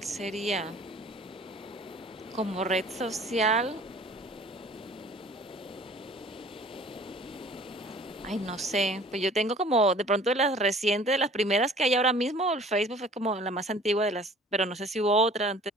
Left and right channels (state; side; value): normal; both; correlation 0.49